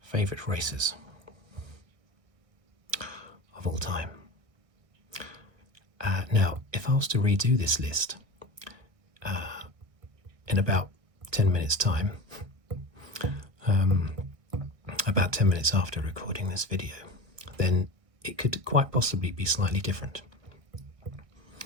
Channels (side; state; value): left; late; 1.6 ms